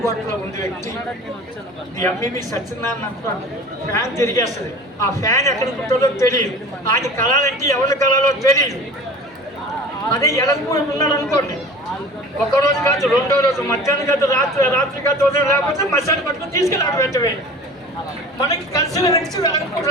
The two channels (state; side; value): normal; both; correlation 0.40